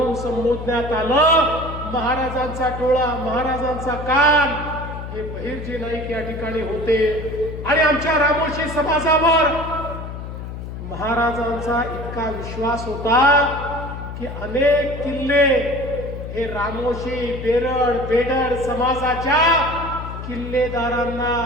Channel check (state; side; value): noise; left; hum, 8 dB below the sound